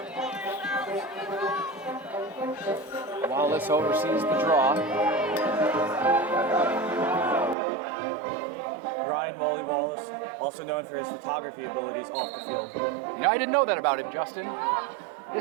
Wallace oversees the draw. Ryan Wally Wallace, also known for his photography abilities off the field. You know, I didn't know that about him, Justin.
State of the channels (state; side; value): drops out; left; at 7.6 s